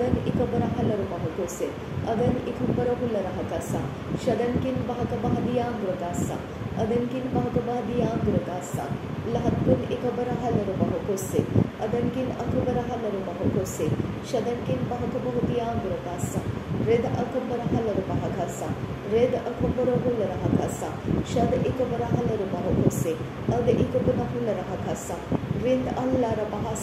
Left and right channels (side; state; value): both; identical; correlation 1.00